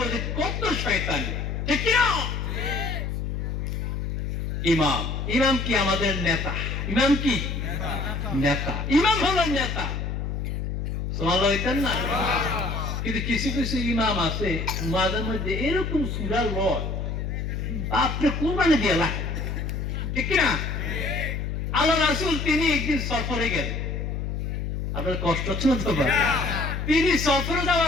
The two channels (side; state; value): left; noise; hum, 3 dB below the sound